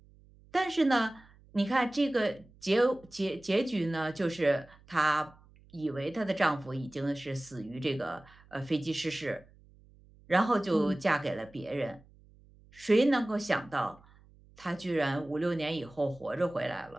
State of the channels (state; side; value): noise; right; hum, 26 dB below the sound